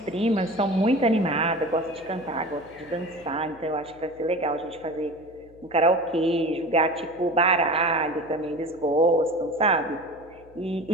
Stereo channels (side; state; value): left; noise; hum, 25 dB below the sound